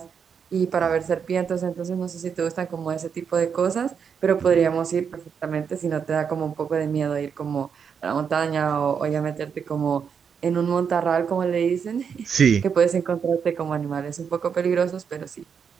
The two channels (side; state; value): left; quieter; 6.8 dB